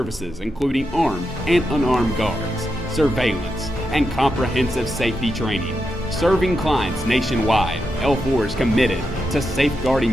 including armed and unarmed guards, surveillance, and comprehensive safety training. Serving clients nationwide, L4 is committed to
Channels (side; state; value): both; normal; correlation 0.86